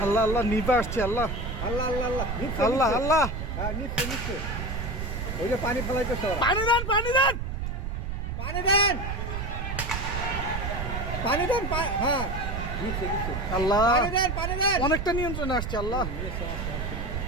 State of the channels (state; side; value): noise; right; rumble, 4 dB below the sound